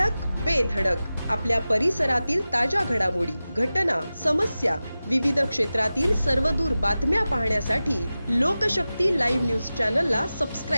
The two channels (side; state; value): both; inverted; correlation -0.95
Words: बेधडक आपल्या परिसरातील ताज्या घडामोडी, घटना, समस्या, विविध क्षेत्रातील सर्वदूर बातम्या पाहण्यासाठी लोकशक्ती लाईव्ह न्यूज चॅनलला